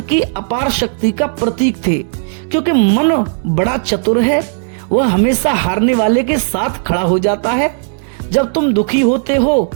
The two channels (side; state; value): left; silent; digital silence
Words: की अपार शक्ति का प्रतीक थे। क्योंकि मन बड़ा चतुर है, वह हमेशा हारने वाले के साथ खड़ा हो जाता है। जब तुम दुखी होते हो